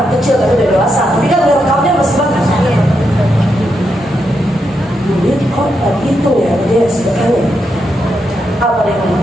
kecil tapi udah dewasa. Tapi kan direkamnya masih bagus. Dia kok gitu ya dia sebetulnya. Apa dia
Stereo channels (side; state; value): both; normal; correlation 0.83